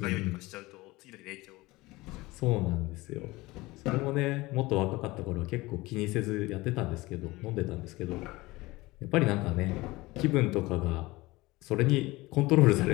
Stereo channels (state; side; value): quieter; right; 20.7 dB